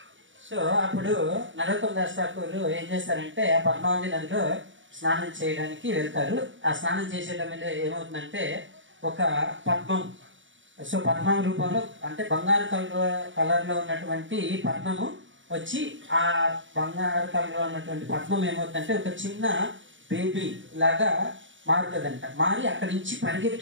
So అప్పుడు నరోత్తమ్ దాస్ ఠాకూర్ ఏం చేస్తారంటే, ఆ పద్మావతి నదిలో స్నానం చేయడానికి వెళ్తారు. ఆ స్నానం చేసేటప్పుడు ఏమవుతుందంటే, ఒక పద్మం, సో పద్మం రూపంలో అంటే బంగారు కలర్లో ఉన్నటువంటి పద్మము వచ్చి, ఆ బంగారు కలర్లో ఉన్నటువంటి పద్మం ఏమవుతుందంటే ఒక చిన్న బేబీ లాగా మారుతుందంట. మారి అక్కడి నుంచి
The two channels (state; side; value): late; left; 0.56 ms